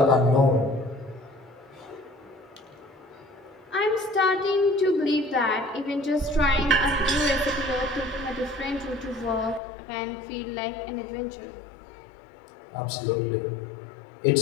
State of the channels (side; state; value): right; drops out; at 9.6 s